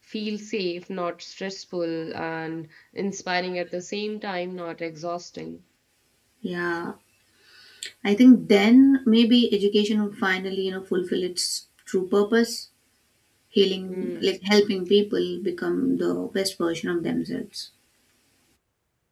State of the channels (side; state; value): both; identical; correlation 1.00